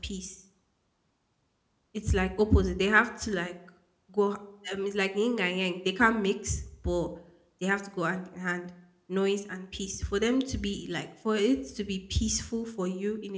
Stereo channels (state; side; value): identical; both; correlation 1.00